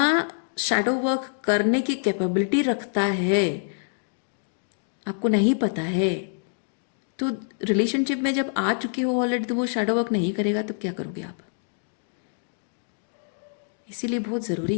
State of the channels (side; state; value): right; silent; digital silence